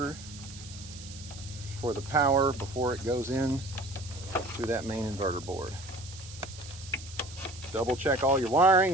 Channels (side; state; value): right; noise; hiss, 15 dB below the sound